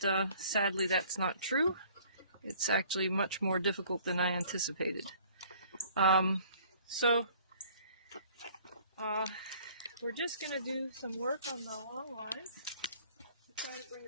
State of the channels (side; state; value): both; inverted; correlation -0.55